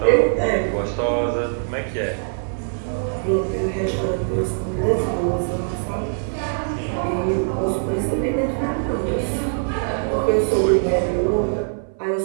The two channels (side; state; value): left; silent; 59 dB below the other